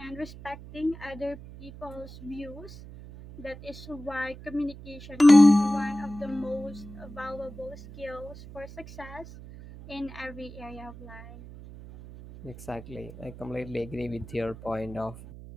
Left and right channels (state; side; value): noise; right; hum, 15 dB below the sound